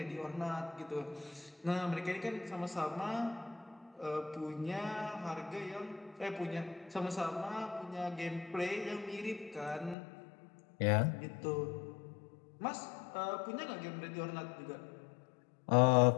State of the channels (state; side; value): drops out; right; at 10.0 s